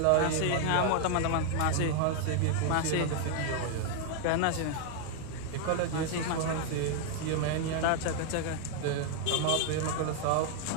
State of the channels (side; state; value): both; different; correlation 0.00